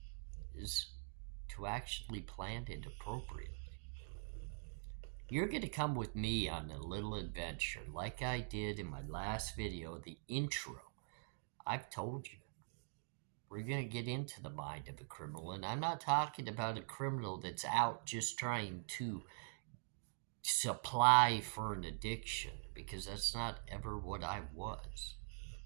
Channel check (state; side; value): silent; left; digital silence